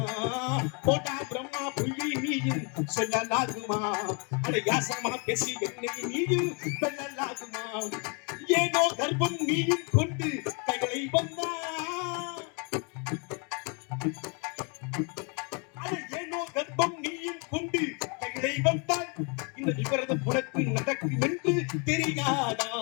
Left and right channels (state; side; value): quieter; right; 34.6 dB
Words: போடா பிரம்மா, புள்ளி நீயும் சொல்லலாகுமா? அட யாசகமா பேசி என்னை நீயும் வெல்லலாகுமா? ஏதோ கர்ப்பம் நீயும் கொண்டு கைகளை வந்தா, ஏனோ கர்ப்பம் நீயும் கொண்டு கைகளை வந்தால் இந்த விவரதம் உனக்கு நடக்கும் என்று தெரியாதா?